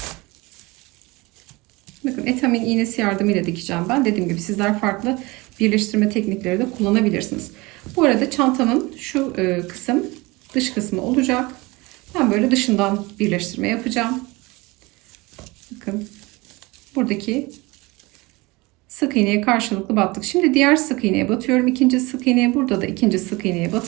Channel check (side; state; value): left; quieter; 23.4 dB